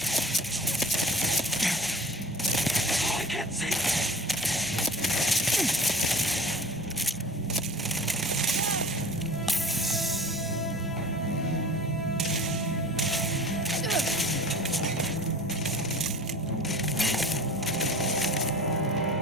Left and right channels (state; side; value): normal; both; correlation 0.41